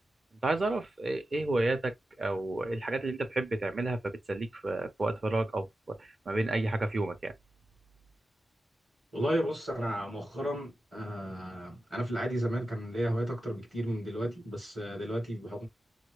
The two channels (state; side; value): normal; both; correlation 0.92